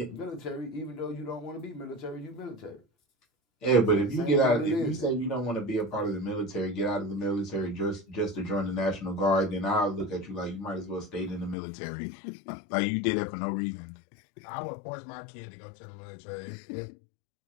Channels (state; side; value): drops out; right; at 11.6 s